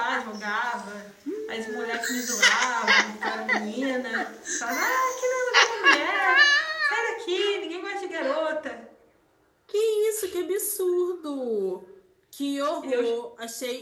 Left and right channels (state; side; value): identical; both; correlation 1.00